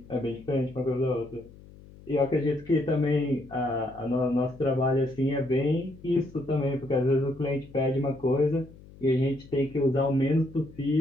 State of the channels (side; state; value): left; noise; hum, 21 dB below the sound